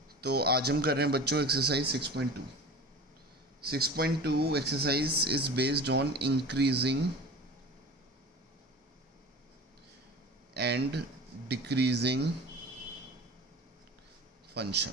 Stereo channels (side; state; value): both; normal; correlation 0.36